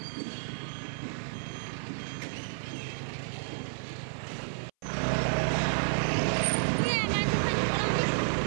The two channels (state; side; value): silent; left; 57 dB below the other